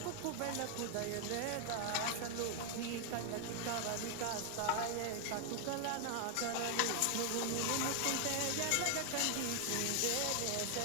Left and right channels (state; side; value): different; both; correlation 0.00